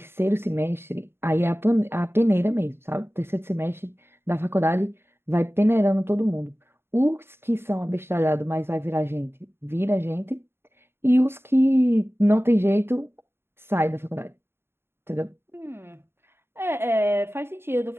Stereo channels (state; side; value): late; left; 0.11 ms